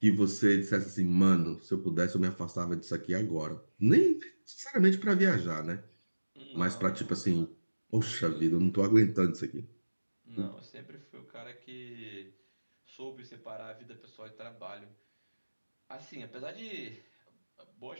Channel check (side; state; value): both; inverted; correlation -1.00